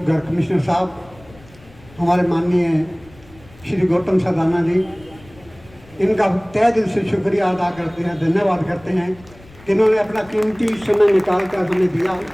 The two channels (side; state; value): left; noise; rumble, 24 dB below the sound